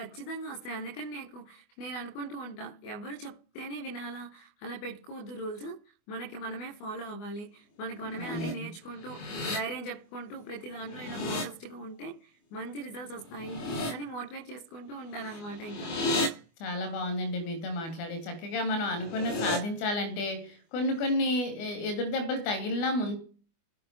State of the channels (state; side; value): late; right; 24 ms